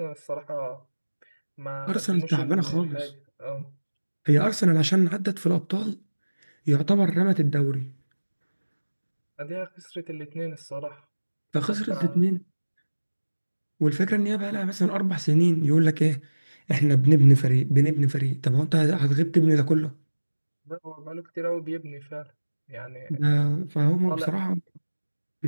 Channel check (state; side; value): inverted; both; correlation -1.00